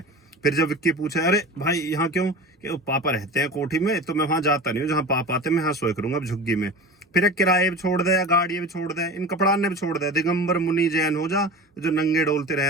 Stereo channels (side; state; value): both; normal; correlation 0.33